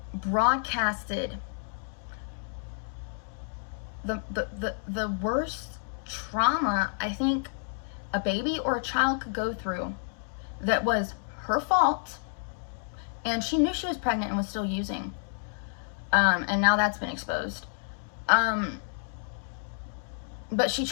broadcasted the worst trauma I think a baby or a child could go through, that was her fault, and she knew she was pregnant and was still using, and now that's been exposed, but she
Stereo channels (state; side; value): silent; right; digital silence